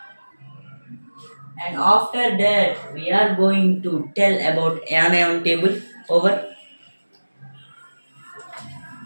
And after that, we are going to tell about anion table. Over.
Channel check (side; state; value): both; inverted; correlation -1.00